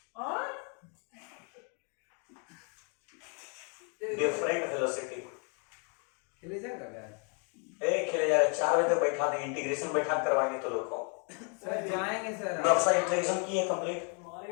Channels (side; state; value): right; quieter; 38.1 dB